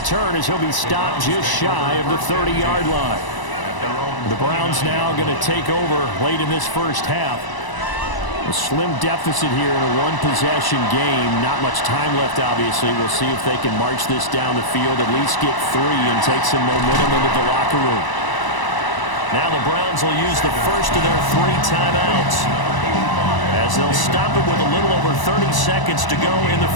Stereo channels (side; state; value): right; late; 1.0 ms